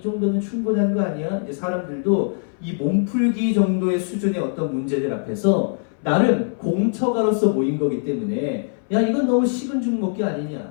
충분한 거 아니야? 이제 사람들도 이 몸풀기 정도의 수준의 어떤 문제들 앞에서 나름 공처가로서 모인 거기 때문에 야, 이건 너무 식은 죽 먹기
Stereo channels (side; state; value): right; silent; 60 dB below the other